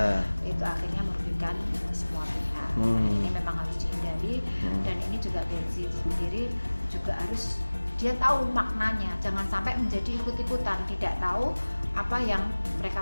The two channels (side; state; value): both; inverted; correlation -1.00